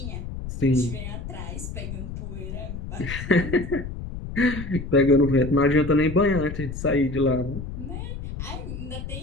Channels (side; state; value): left; noise; rumble, 8 dB below the sound